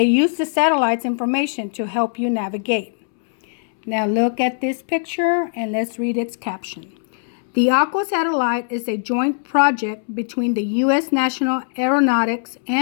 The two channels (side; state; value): right; silent; 65 dB below the other